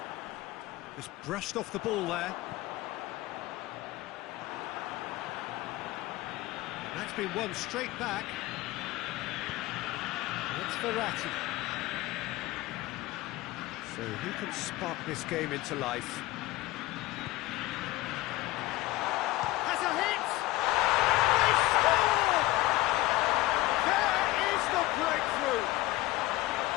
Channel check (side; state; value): right; quieter; 18.1 dB